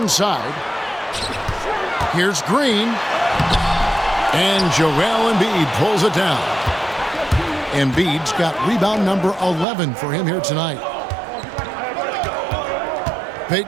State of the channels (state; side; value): drops out; left; at 9.7 s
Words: Here's Green. And Joel Embiid pulls it down. Embiid's got rebound number 11 for him here tonight.